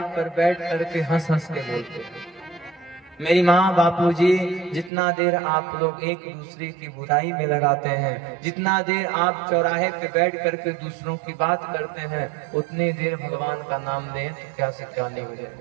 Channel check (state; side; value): drops out; left; at 4.9 s